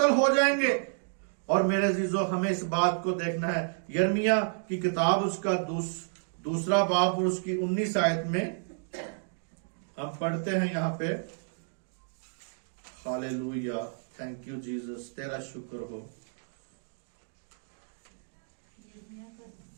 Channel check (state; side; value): silent; left; digital silence